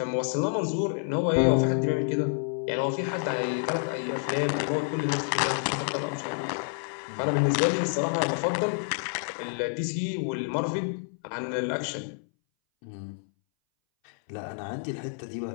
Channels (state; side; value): silent; right; 59 dB below the other